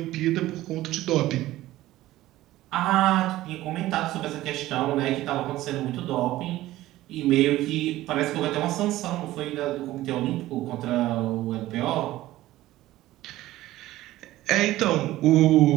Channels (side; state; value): left; quieter; 15.9 dB